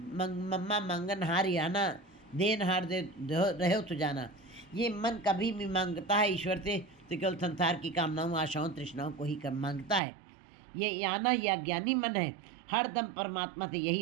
मम्मा मंगन हार आना, देन हार दे रहे हो तो जाना। ये मन कभी भी मांगता है ईश्वर से तो केवल संसार की कामनाओं, आशाओं, तृष्णाओं को ही मांगता है। ये आना, ये अज्ञानी मन है, हर दम परमात्मा से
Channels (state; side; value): drops out; left; at 10.0 s